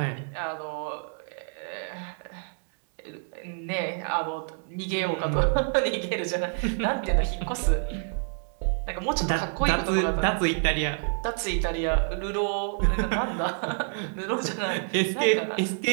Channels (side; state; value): left; silent; 60 dB below the other